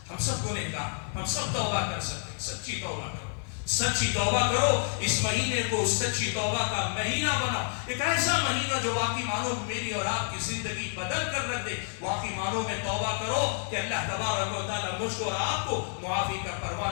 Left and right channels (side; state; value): right; silent; digital silence